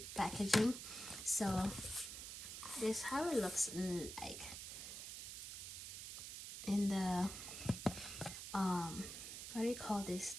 packaging. So this is how it looks like in the what do you call this,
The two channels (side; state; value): right; noise; hiss, 8 dB below the sound